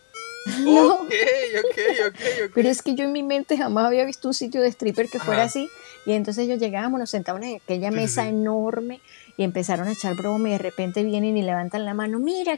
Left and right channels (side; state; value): right; silent; 64 dB below the other